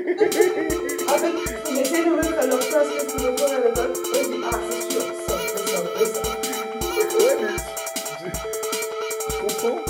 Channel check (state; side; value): identical; both; correlation 1.00